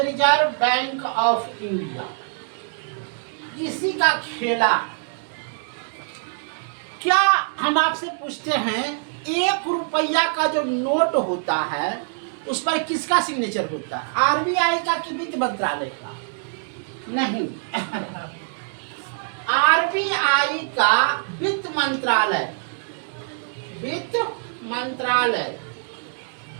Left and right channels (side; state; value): left; silent; digital silence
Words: रिजर्व बैंक ऑफ इंडिया, इसी का खेला। क्या हम आपसे पूछते हैं, 1 रुपया का जो नोट होता है उस पर किसका सिग्नेचर होता है? आरबीआई का कि वित्त मंत्रालय का? नहीं, आरबीआई का वित्त मंत्रालय। वित्त मंत्रालय